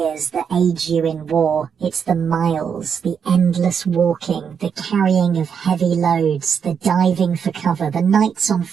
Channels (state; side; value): quieter; left; 7.0 dB